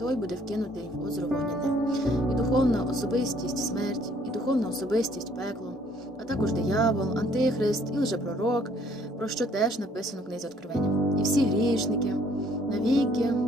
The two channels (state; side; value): normal; both; correlation 0.62